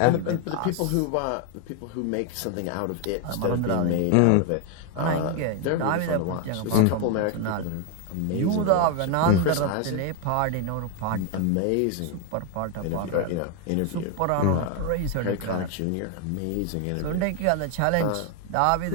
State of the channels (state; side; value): different; both; correlation 0.01